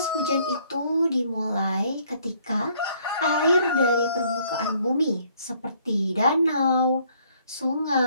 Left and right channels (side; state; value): both; inverted; correlation -0.64